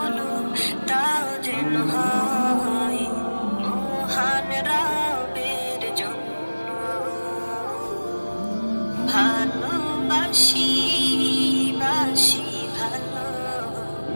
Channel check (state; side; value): inverted; both; correlation -1.00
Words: তাও যেন হয় মহান রবের জন্য। ভালোবাসি বাসি ভালো,